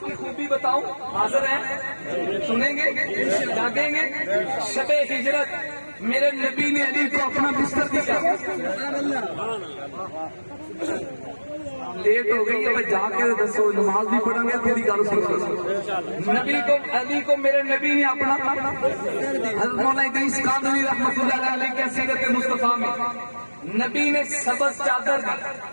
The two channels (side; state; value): both; inverted; correlation -1.00